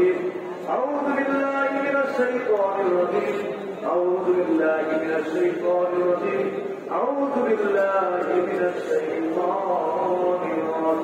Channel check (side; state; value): both; identical; correlation 1.00